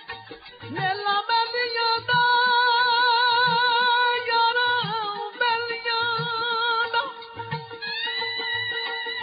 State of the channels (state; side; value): identical; both; correlation 1.00